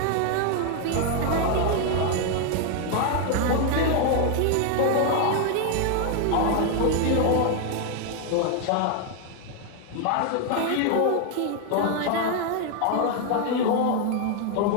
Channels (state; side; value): different; both; correlation 0.00